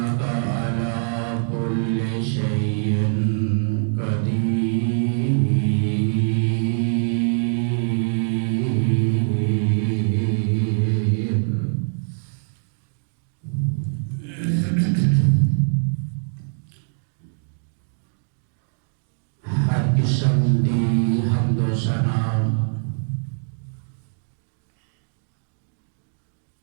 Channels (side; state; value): left; silent; digital silence